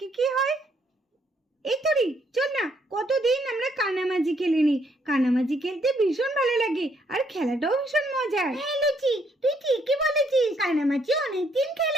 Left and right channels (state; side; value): normal; both; correlation 0.70